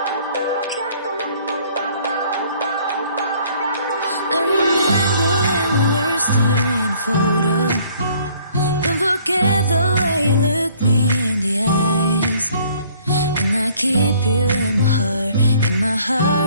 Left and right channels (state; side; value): inverted; both; correlation -0.59